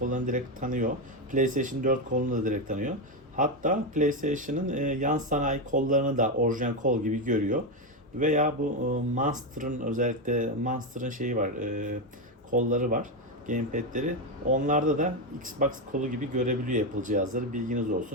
direkt tanıyor. PlayStation 4 kolunu da direkt tanıyor. Hatta PlayStation'ın yan sanayi kollarını da orijinal kol gibi görüyor. Veya bu Monster'ın özellikle Monster'ın şeyi var, kolları var, gamepad'leri. Onlarda da Xbox kolu gibi görebiliyor Apple cihazları. Bilginiz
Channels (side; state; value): both; normal; correlation 0.09